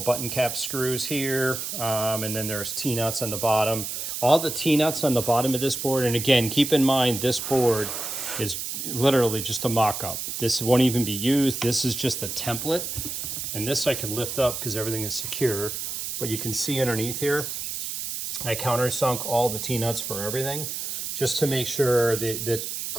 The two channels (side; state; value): right; noise; hiss, 5 dB below the sound